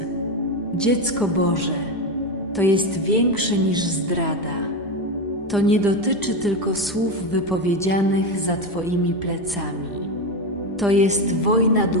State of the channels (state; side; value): normal; both; correlation 0.14